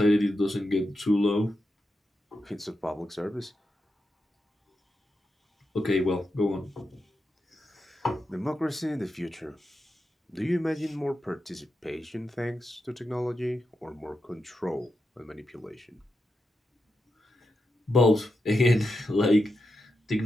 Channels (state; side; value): normal; both; correlation 0.87